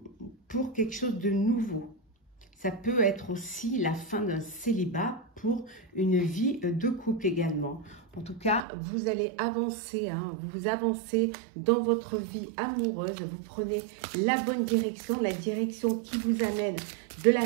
pour quelque chose de nouveau. Ça peut être aussi la fin d'un célibat pour une vie de couple également. En tout cas, vous allez avancer, vous avancez dans votre vie amoureuse, vous prenez la bonne direction, la direction qui vous amène de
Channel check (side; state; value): left; drops out; at 8.6 s